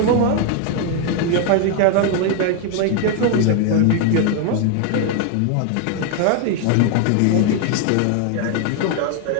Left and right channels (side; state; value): both; different; correlation 0.00